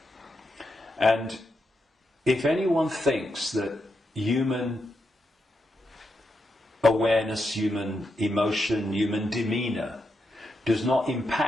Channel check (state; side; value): normal; both; correlation 0.84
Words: And if anyone thinks that human awareness, human emotion, human demeanour does not